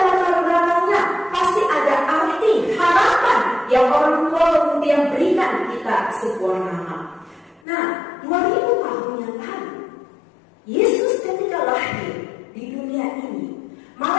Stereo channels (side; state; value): right; drops out; at 7.6 s